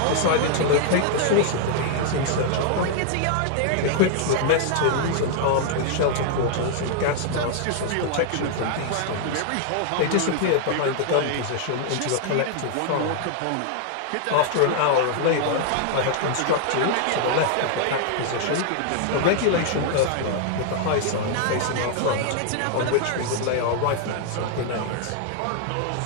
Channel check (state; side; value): different; both; correlation 0.00